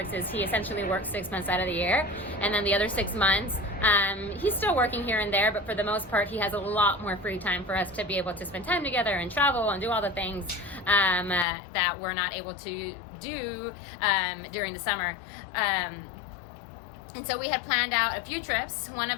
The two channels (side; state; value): right; drops out; at 11.5 s